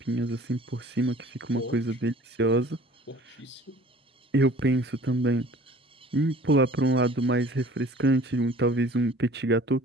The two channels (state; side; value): normal; both; correlation 0.49